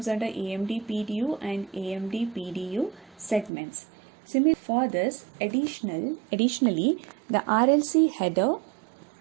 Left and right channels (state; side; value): drops out; left; at 3.5 s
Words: under AMD PDU and AMD PDU segments. Similarly, for this, additionally, the RLC header